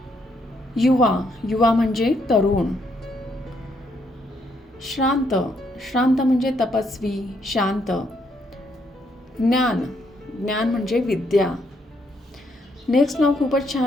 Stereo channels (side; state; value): both; normal; correlation 0.74